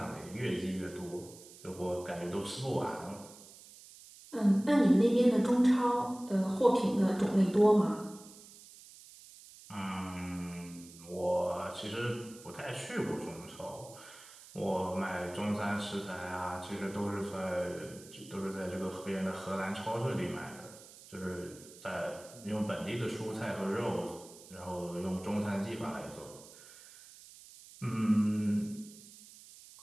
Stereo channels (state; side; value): noise; right; hiss, 19 dB below the sound